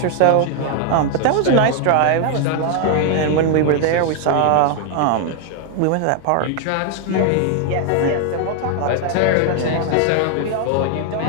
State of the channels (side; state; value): both; different; correlation 0.00